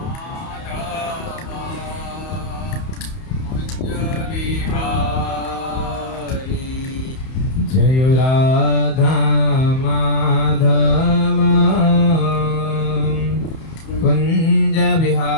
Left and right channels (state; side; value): late; right; 31 ms